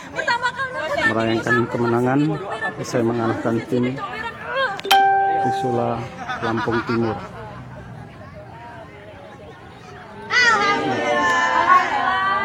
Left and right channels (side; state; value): both; identical; correlation 1.00